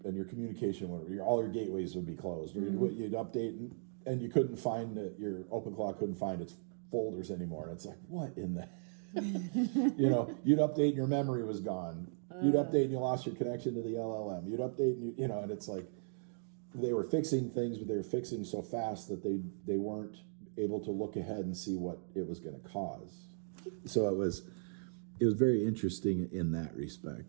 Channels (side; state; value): left; silent; digital silence